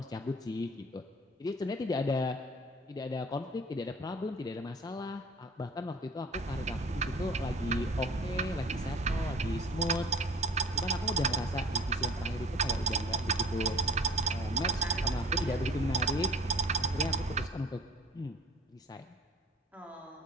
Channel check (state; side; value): normal; both; correlation 0.46